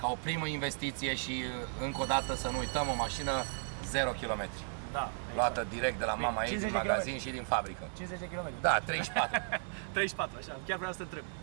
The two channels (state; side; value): silent; left; 54 dB below the other